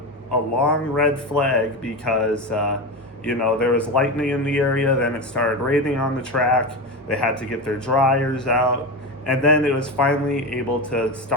red flag because there was lightning in the area. Then it started raining on the track. They had to get their dryers out, and then it was finally able to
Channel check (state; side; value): normal; both; correlation 0.20